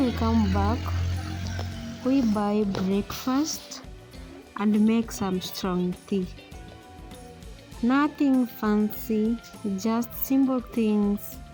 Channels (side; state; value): both; identical; correlation 1.00